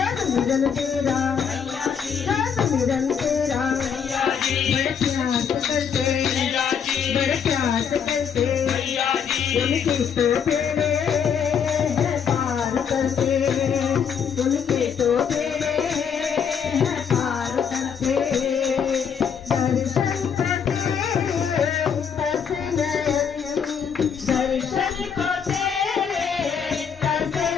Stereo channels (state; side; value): quieter; right; 7.2 dB